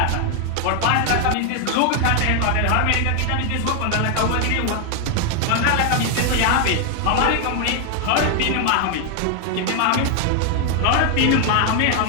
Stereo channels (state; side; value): different; both; correlation 0.00